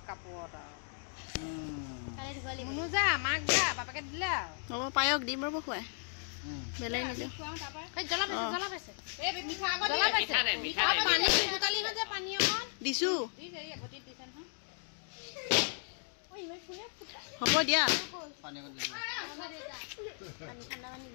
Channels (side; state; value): right; silent; 54 dB below the other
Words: কাপোৰত আৰু মুনু যা মাক যা বাপেকে দিলে হ'ব পায়স দিম ৰ'ব খুৱাই বেলেগ নিদিওঁ দিছোঁ হ'ব দিয়া